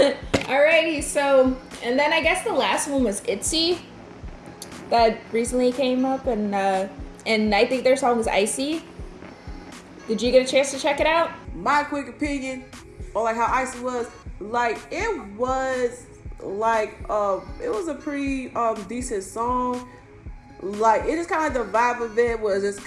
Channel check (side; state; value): both; identical; correlation 1.00